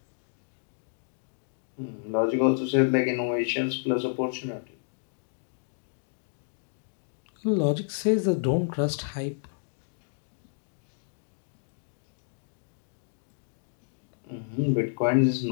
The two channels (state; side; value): silent; right; digital silence